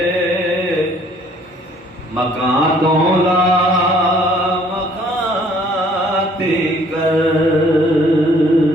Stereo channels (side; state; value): both; normal; correlation 0.59